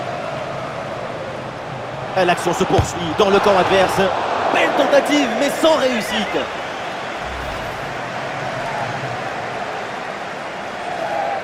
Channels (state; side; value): identical; both; correlation 1.00